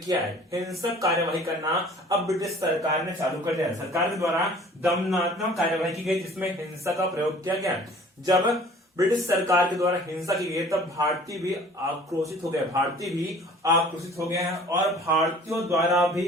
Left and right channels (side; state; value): both; normal; correlation 0.49